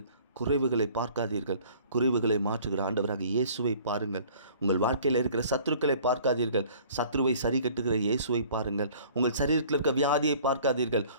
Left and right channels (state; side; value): inverted; both; correlation -0.52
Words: குறைவுகளை பார்க்காதீர்கள், குறைவுகளை மாற்றுகிற ஆண்டவராக இயேசுவை பாருங்கள். உங்கள் வாழ்க்கையில் இருக்கிற சத்துருக்களை பார்க்காதீர்கள், சத்ருவை சரி கட்டுகிற இயேசுவை பாருங்கள். உங்கள் சரீரத்தில் இருக்க வியாதியை பார்க்காதீர்கள்,